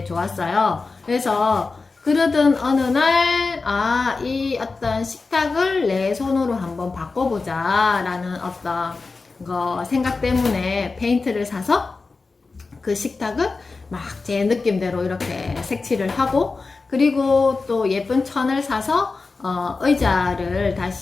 좋았어요. 그래서 그러던 어느 날, 이 어떤 식탁을 내 손으로 한번 바꿔보자 라는 어떤 생각 때문에 페인트를 사서 그 식탁을 막 제 느낌대로 이렇게 색칠을 하고, 그리고 또 예쁜 천을 사서 의자를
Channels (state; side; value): quieter; right; 4.0 dB